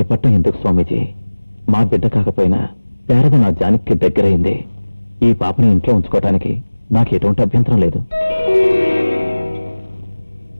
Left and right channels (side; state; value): both; inverted; correlation -1.00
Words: ఎందుకు స్వామీజీ? మా బిడ్డ కాకపోయినా శారద నా జానకి దగ్గరైంది. ఈ పాపని ఇంట్లో ఉంచుకోవటానికి నాకు ఎటువంటి అభ్యంతరం లేదు.